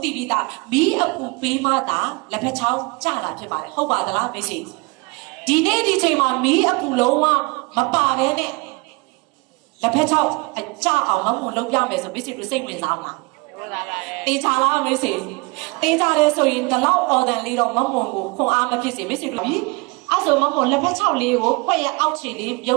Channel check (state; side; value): quieter; left; 27.9 dB